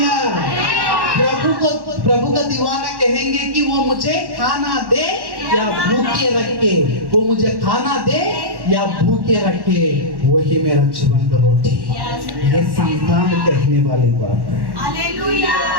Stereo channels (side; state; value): left; late; 1.1 ms